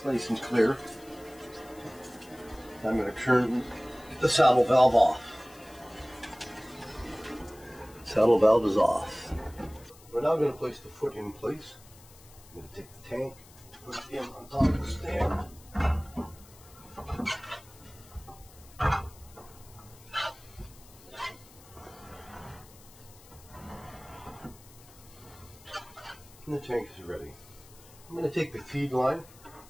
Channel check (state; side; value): noise; left; hiss, 23 dB below the sound